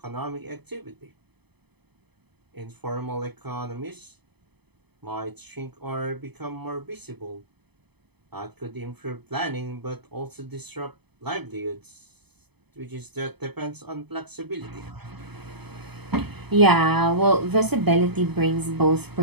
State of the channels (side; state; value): left; late; 0.98 ms